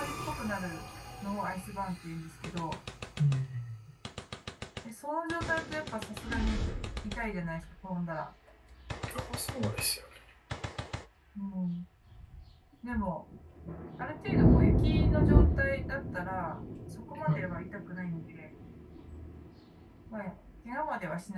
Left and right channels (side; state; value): both; identical; correlation 1.00